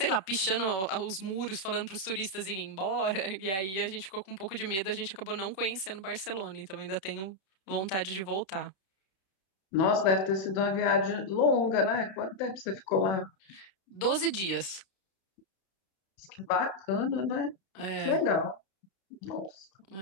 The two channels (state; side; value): late; right; 31 ms